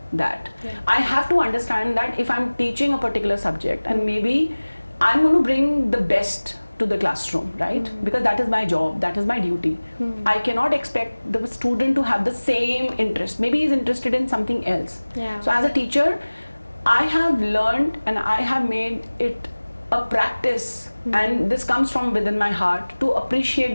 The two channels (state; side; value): inverted; both; correlation -1.00